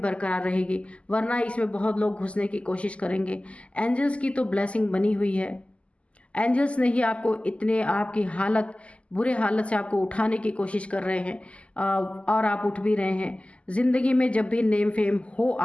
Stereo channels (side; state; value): right; late; 0.058 ms